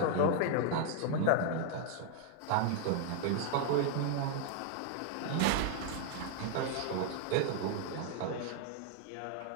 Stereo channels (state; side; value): different; both; correlation 0.00